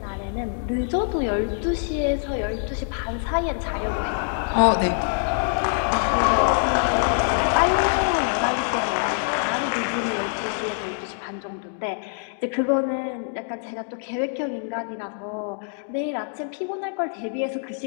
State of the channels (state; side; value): silent; right; 62 dB below the other